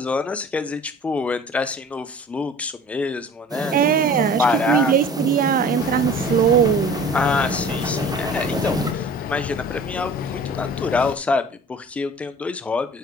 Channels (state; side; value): normal; both; correlation 0.44